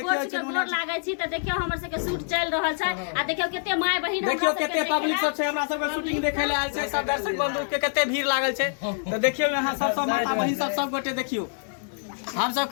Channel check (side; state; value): right; silent; digital silence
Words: चुनमुनिया लागे छी। त देखियो हमर सब के शूट चल रहल छै आ देखियो केते माय बहिन देखियो केते पब्लिक सब छै हमरा सब के शूटिंग देखे ले आयल छै। सब दर्शक बंधु के केते भीड़ लागल छै। तो देखियो यहां सब माता बहिन सब गोटे देखियो हम सब